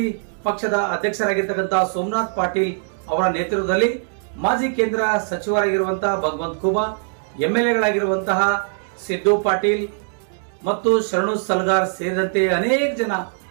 ಪಕ್ಷದ ಅಧ್ಯಕ್ಷರಾಗಿರ್ತಕ್ಕಂತಹ ಸೋಮನಾಥ್ ಪಾಟೀಲ್ ಅವರ ನೇತೃತ್ವದಲ್ಲಿ ಮಾಜಿ ಕೇಂದ್ರ ಸಚಿವರಾಗಿರುವಂತಹ ಭಗವಂತ ಖೂಬಾ, ಎಂಎಲ್ಎಗಳಾಗಿರುವಂತಹ ಸಿದ್ದು ಪಾಟೀಲ್ ಮತ್ತು ಶರಣು ಸಲ್ಗಾರ್ ಸೇರಿದಂತೆ ಅನೇಕ ಜನ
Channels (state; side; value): silent; left; digital silence